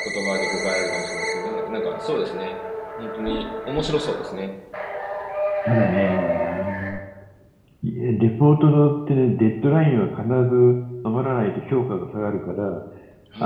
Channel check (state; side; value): identical; both; correlation 1.00